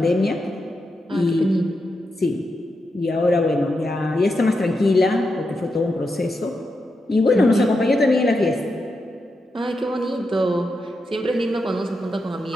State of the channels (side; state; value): both; normal; correlation 0.86